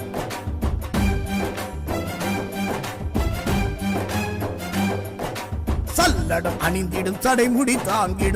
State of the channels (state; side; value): identical; both; correlation 1.00